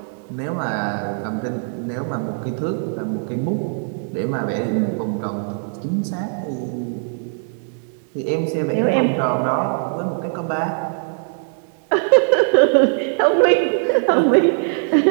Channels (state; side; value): silent; left; 65 dB below the other